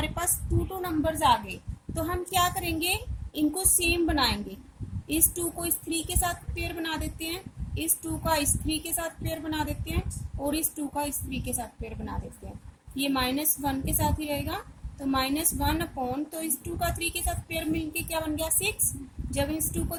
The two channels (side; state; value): both; identical; correlation 1.00